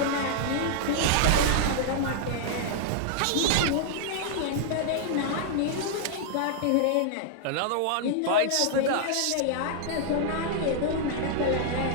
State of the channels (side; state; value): both; different; correlation -0.01